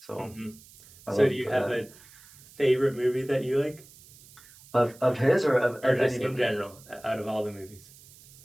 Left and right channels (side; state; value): right; noise; hiss, 23 dB below the sound